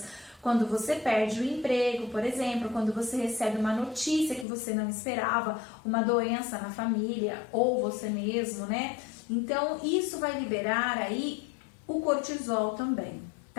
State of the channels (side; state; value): right; drops out; at 4.5 s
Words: Quando você perde o emprego, por exemplo, quando você recebe uma notícia que você não esperava, uma doença na família, ou você mesmo, né? Então, isso vai liberar aí o cortisol também,